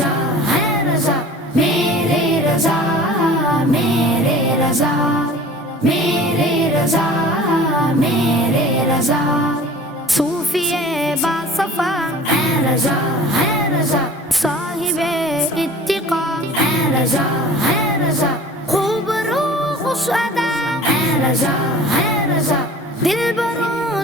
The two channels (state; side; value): normal; both; correlation 0.44